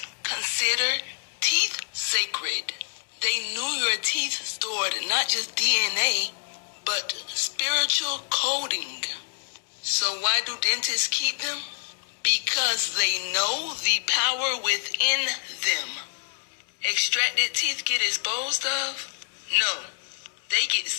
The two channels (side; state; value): right; silent; 60 dB below the other